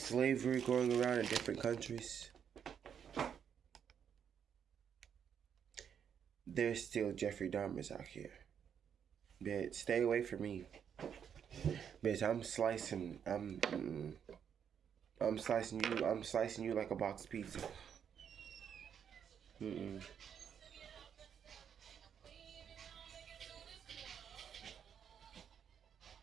going around in different countries, there's still Jeffrey Dahmers out here. Bitch, stay away from me. Bitch, I'm slicing you like a box pizza.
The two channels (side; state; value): left; quieter; 8.0 dB